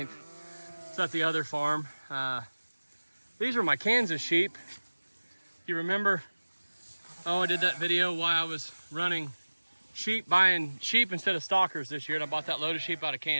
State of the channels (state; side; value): inverted; both; correlation -1.00